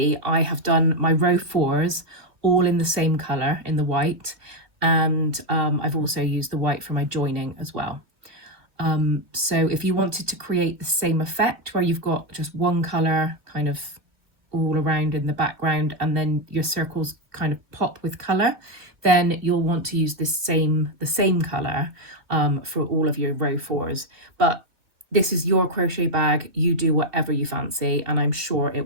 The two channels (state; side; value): late; left; 2.5 ms